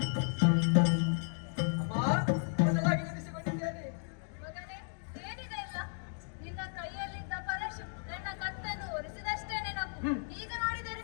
ಅಮ್ಮ, ಬದಲಾಗಿ ನೆನೆಸಿಕೊಂಡಿದ್ದೇನೆ.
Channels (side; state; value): right; silent; digital silence